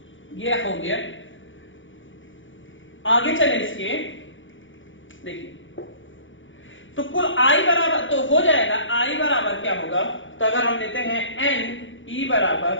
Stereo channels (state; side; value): late; right; 0.56 ms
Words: ये हो गया। आगे चले इसके, देखिए तो कुल आई बराबर तो हो जाएगा, आई बराबर क्या होगा, तो अगर हम लेते हैं एन, ई